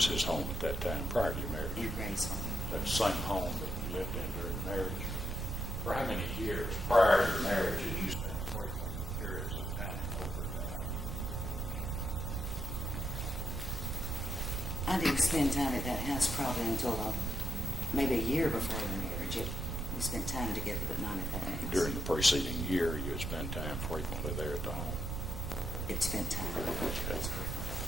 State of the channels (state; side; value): noise; right; rumble, 3 dB below the sound